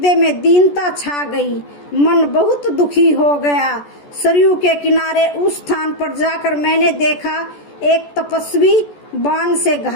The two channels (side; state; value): right; late; 14 ms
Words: में दीनता छा गई। मन बहुत दुखी हो गया। सरयू के किनारे उस स्थान पर जाकर मैंने देखा एक तपस्वी बाण से